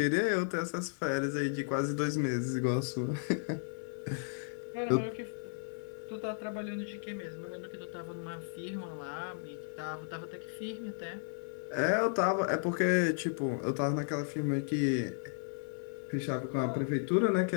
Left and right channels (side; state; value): right; silent; digital silence